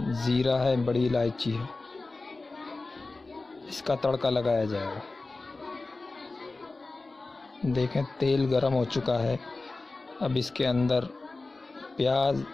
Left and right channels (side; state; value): right; quieter; 3.4 dB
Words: ज़ीरा है, बड़ी इलायची है, इसका तड़का लगाया जाएगा। देखें तेल गरम हो चुका है। अब इसके अंदर प्याज,